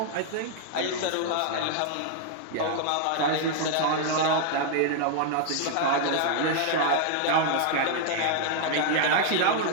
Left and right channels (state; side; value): different; both; correlation 0.00